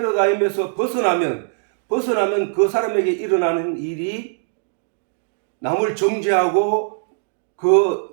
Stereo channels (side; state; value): left; silent; 65 dB below the other